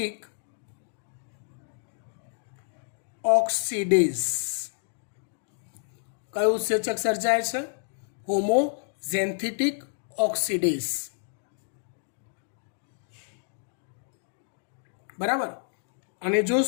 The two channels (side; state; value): right; silent; digital silence